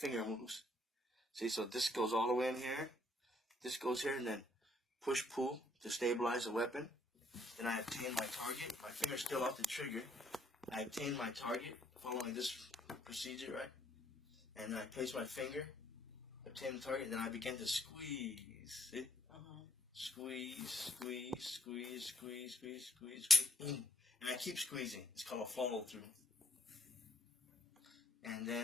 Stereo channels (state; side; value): normal; both; correlation 0.67